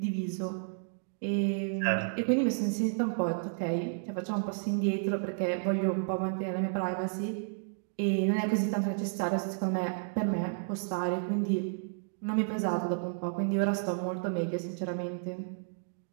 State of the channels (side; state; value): left; silent; digital silence